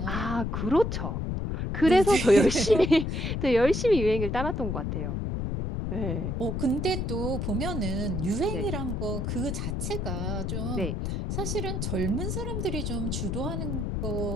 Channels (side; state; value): left; noise; rumble, 2 dB below the sound